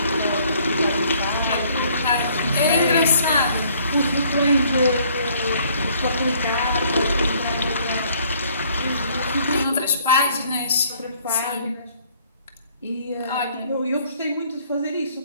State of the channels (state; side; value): inverted; both; correlation -0.61